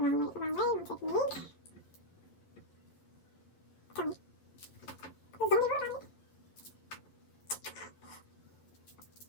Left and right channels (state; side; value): late; right; 11 ms